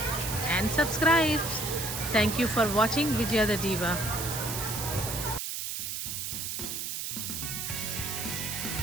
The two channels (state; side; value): noise; right; hiss, 4 dB below the sound